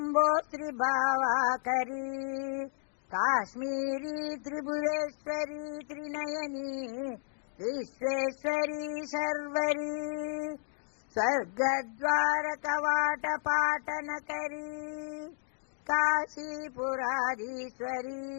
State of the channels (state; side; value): silent; right; digital silence